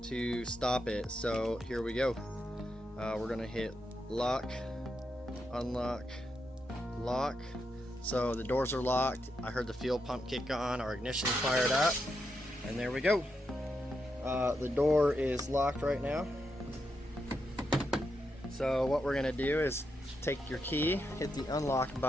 to stop it. So here we go. We're gonna hit lock, unlock, lock. So the doors are locked. I heard the fuel pump kick on, our ignition fired up, and there we go. The door is locked right now. So what we're gonna do is take your key, hit the unlock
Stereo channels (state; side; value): normal; both; correlation 0.84